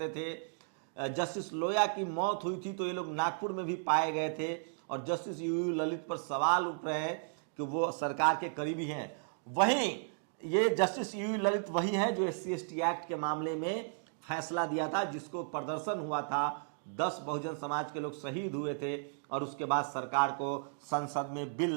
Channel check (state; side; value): silent; left; digital silence